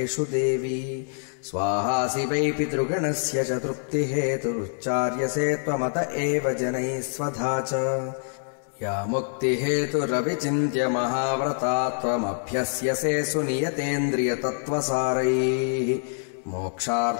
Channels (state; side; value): silent; right; digital silence